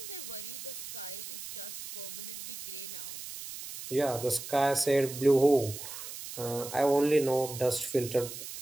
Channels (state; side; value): noise; right; hiss, 10 dB below the sound